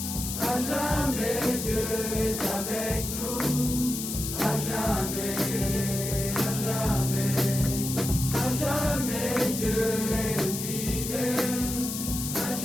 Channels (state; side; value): noise; left; hiss, 5 dB below the sound